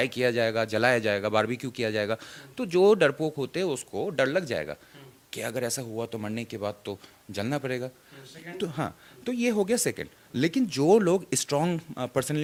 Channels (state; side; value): identical; both; correlation 1.00